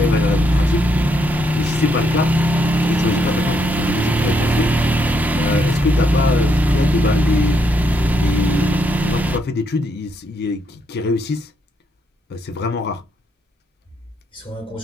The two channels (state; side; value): normal; both; correlation 0.76